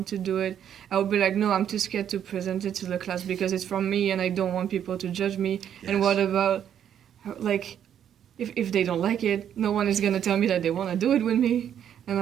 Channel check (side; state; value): left; quieter; 9.5 dB